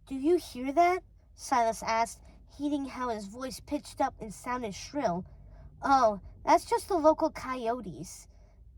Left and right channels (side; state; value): both; identical; correlation 1.00